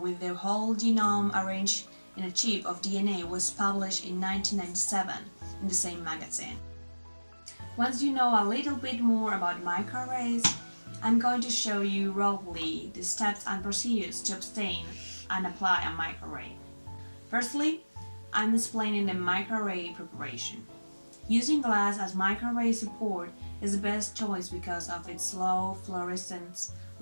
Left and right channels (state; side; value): inverted; both; correlation -1.00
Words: the whole genome arranged in a chip of DNA was published in 1997 in the same magazine. Once you know a little bit more about microarrays, I'm going to show you roughly the steps and procedures to obtain and apply a microarray. Firstly, I'm explaining the microarray preparation. Using glass as microarray support is the best choice because of its low fluorescence,